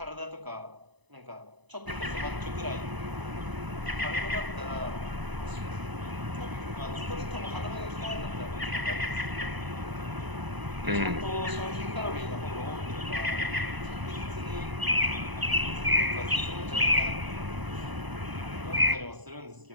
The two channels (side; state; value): left; late; 1.0 ms